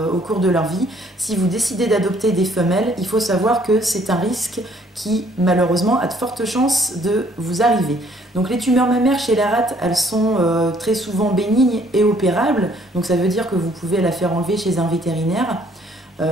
au cours de leur vie. Si vous décidez d'adopter des femelles, il faut savoir que c'est un risque qui, malheureusement, a de fortes chances de vous arriver. Donc les tumeurs mammaires chez la rate, elles sont très souvent bénignes et opérables. Donc ça veut dire que vous pouvez la faire enlever chez un vétérinaire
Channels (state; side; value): normal; both; correlation 0.63